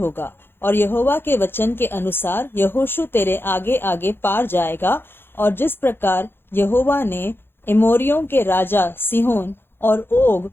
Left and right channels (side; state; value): right; late; 0.10 ms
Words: और यहोवा के वचन के अनुसार यहोशू तेरे आगे आगे पार जाएगा। और जिस प्रकार यहोवा ने एमोरियों के राजा सीहोन और ओग